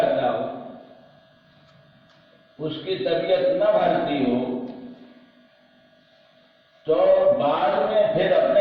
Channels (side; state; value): both; identical; correlation 1.00